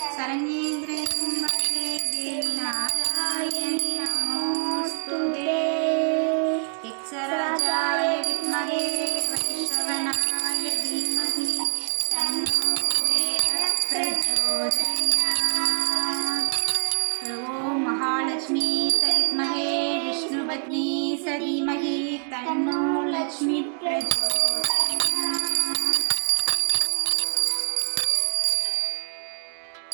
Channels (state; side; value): silent; left; 59 dB below the other